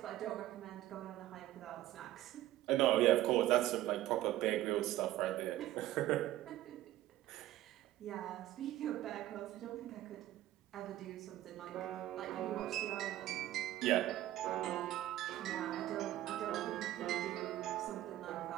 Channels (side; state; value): left; quieter; 14.5 dB